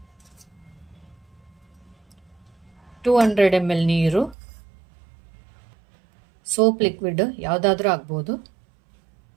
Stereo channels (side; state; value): left; drops out; at 4.4 s